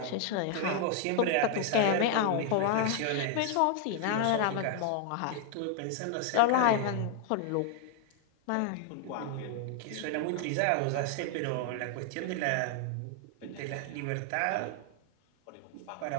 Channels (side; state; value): both; different; correlation 0.00